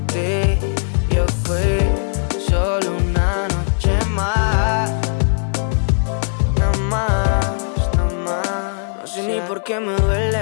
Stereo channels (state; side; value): silent; right; 67 dB below the other